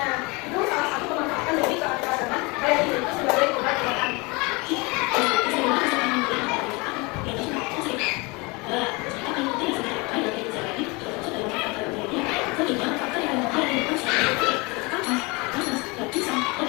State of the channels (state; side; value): quieter; right; 26.7 dB